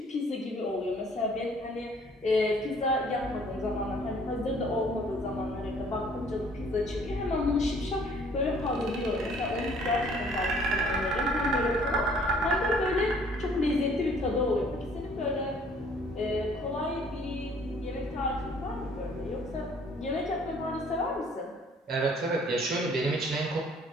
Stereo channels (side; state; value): both; normal; correlation 0.58